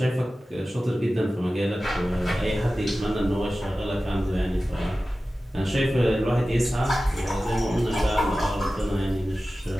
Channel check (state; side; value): normal; both; correlation 0.95